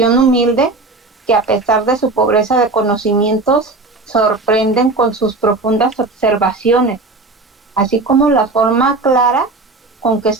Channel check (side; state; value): left; quieter; 3.4 dB